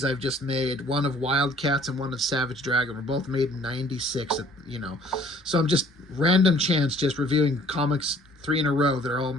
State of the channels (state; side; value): normal; both; correlation 0.56